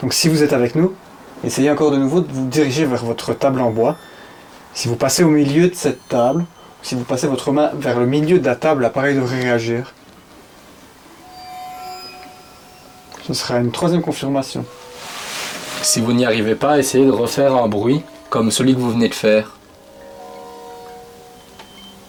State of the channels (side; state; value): both; identical; correlation 1.00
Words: Donc si vous êtes avec nous, essayez encore de nouveau de vous diriger vers votre table en bois. Si vous passez au milieu de cette table, si vous passez votre main vers le milieu de la table, l'appareil devrait réagir. Ce sera une troisième confirmation. Si vous n'y arrivez pas, essayez de refaire un bruit comme celui que vous venez de faire.